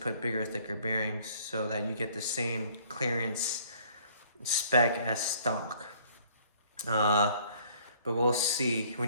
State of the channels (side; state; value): both; inverted; correlation -0.58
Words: bigger, thicker bearings so that you get the same clearance spec as stock. But we'll see.